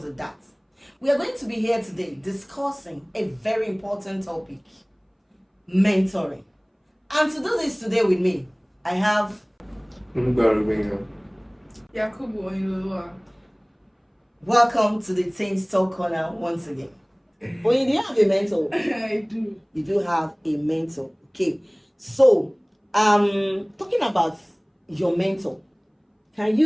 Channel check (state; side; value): identical; both; correlation 1.00